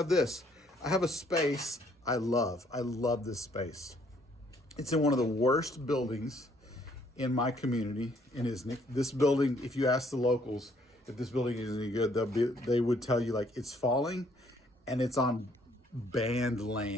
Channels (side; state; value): both; normal; correlation 0.65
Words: this. I have a space I love. I love this space. It's in one of the worst buildings in my community in Isnik. This building, if you ask the locals if this building is any good, they would tell you like it's falling and it's on banned